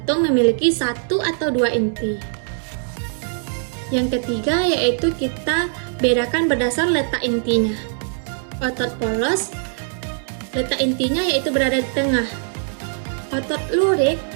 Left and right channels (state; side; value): silent; left; digital silence